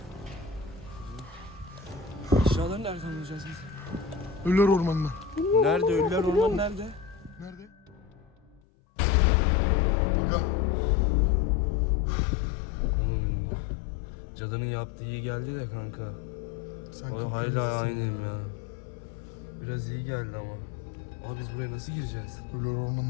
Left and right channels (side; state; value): right; drops out; at 8.6 s